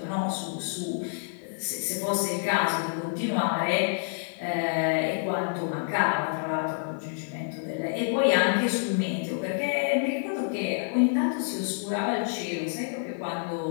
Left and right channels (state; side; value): silent; right; digital silence